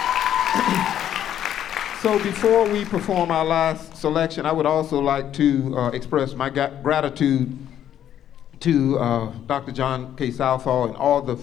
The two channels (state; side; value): quieter; right; 10.5 dB